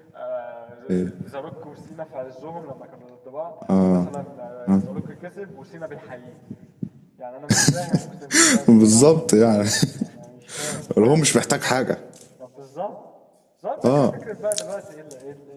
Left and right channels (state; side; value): identical; both; correlation 1.00